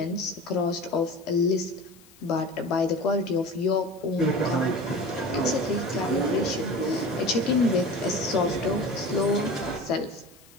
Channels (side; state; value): left; noise; hiss, 26 dB below the sound